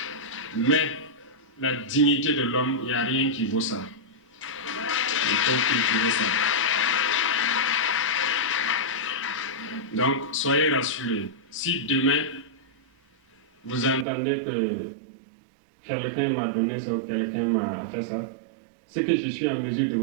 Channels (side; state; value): left; drops out; at 14.1 s